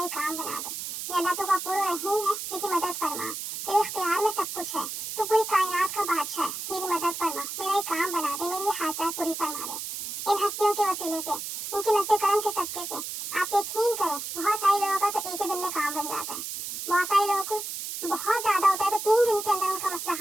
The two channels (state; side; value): noise; right; hiss, 6 dB below the sound